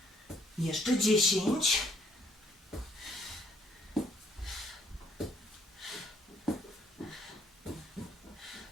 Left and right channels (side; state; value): both; normal; correlation 0.66